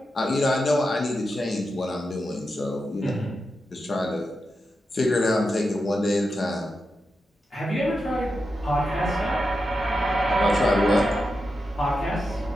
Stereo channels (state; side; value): normal; both; correlation 0.88